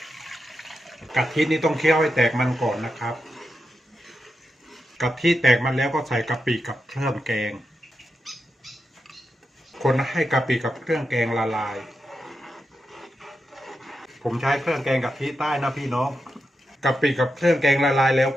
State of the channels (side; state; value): both; normal; correlation 0.87